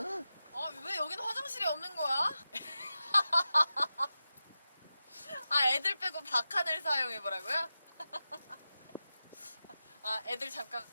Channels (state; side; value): inverted; both; correlation -0.93